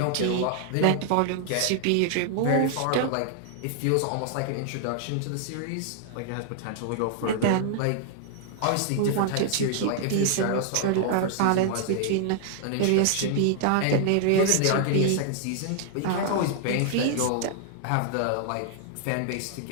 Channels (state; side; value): different; both; correlation -0.01